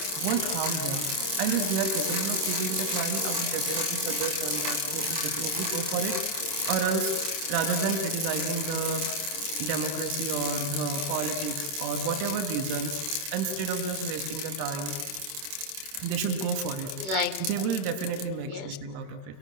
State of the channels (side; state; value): left; late; 27 ms